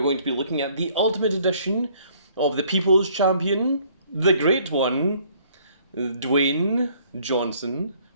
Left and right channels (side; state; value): both; inverted; correlation -0.60